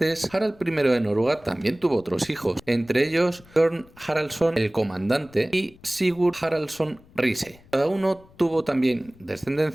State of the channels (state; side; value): noise; left; rumble, 26 dB below the sound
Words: Harald I de Noruega también tuvo otros hijos, entre ellos Bjorn Haraldsson el Comandante y Sigurd Haraldsson Riise. Cada uno tuvo también